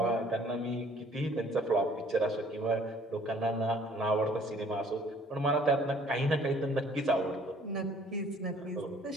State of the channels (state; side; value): normal; both; correlation 0.57